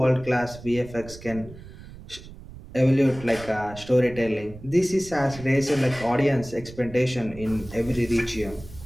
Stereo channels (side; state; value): right; noise; rumble, 16 dB below the sound